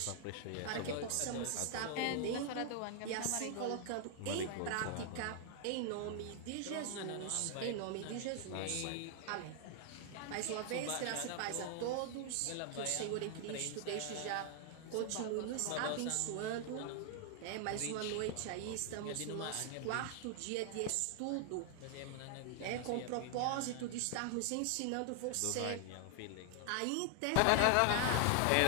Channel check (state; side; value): different; both; correlation 0.00